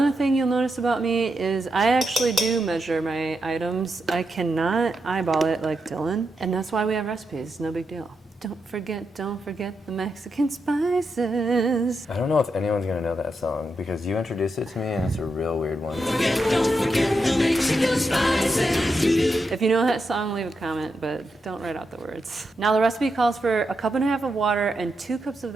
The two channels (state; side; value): normal; both; correlation 0.85